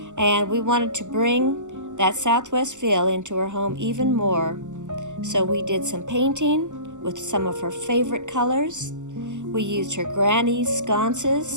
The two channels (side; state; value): left; late; 0.84 ms